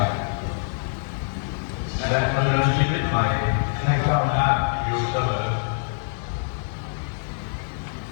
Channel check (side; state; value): right; silent; digital silence